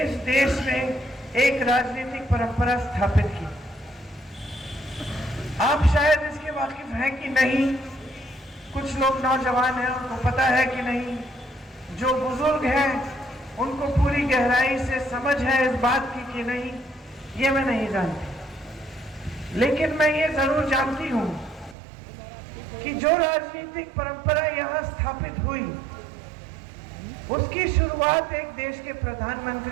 इस देश में एक राजनीतिक परंपरा स्थापित की। आप शायद इसके वाकिफ हैं कि नहीं, कुछ लोग नौजवान हैं उनको पता है कि नहीं, जो बुजुर्ग हैं उनको पूरी गहराई से समझ है इस बात की कि नहीं, ये मैं नहीं जानती। लेकिन मैं ये जरूर जानती हूं कि जो राजनीतिक परंपरा यहां स्थापित हुई उसकी शुरुआत एक देश के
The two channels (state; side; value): drops out; left; at 21.8 s